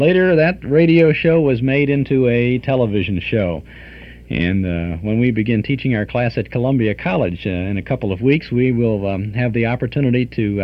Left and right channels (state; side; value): identical; both; correlation 1.00